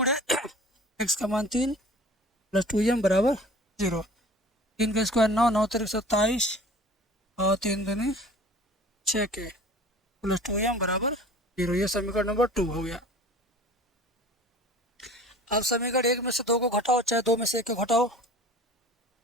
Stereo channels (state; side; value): normal; both; correlation 0.44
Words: x का मान 3 प्लस 2m बराबर 0। 3 का स्क्वायर 9, 9 3 27 और 3 दूनी 6k प्लस 2m बराबर 0। ये समीकरण नंबर 2 हो गया। अब समीकरण 1 में से 2 को घटाओ, चाहे 2 में से 1 को घटाओ,